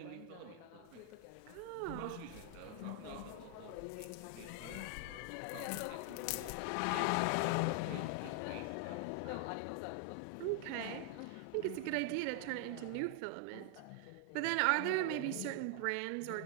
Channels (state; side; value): different; both; correlation 0.00